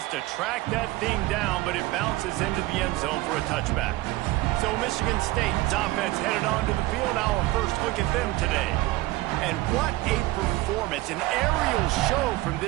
to track that thing down, but it bounces into the end zone for a touchback. So Michigan State's offense headed onto the field. Our first look at them today. And what a performance. An aerial show from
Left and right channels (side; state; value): left; quieter; 18.6 dB